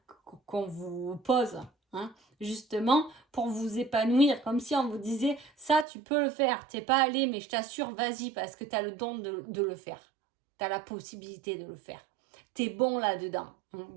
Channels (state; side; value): drops out; left; at 5.9 s